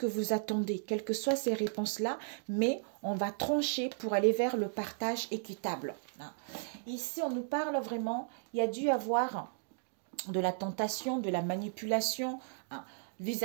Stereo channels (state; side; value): silent; left; digital silence